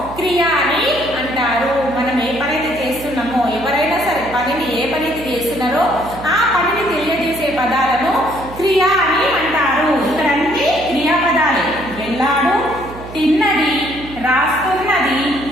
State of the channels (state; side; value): noise; right; hum, 14 dB below the sound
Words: క్రియ అని అంటారు. మనం ఏ పని అయితే చేస్తున్నామో, ఎవరైనా సరే పనిని ఏ పని అయితే చేస్తున్నారో ఆ పనిని తెలియజేసే పదాలను క్రియ అని అంటారు. ఇక్కడ అన్ని క్రియాపదాలే. వెళ్ళాడు, తిన్నది, రాస్తున్నది,